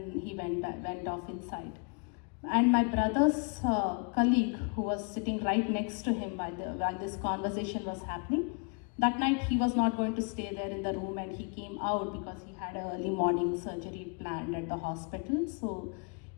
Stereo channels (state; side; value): quieter; right; 36.6 dB